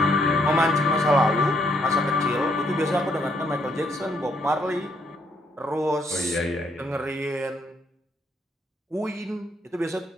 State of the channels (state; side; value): normal; both; correlation 0.71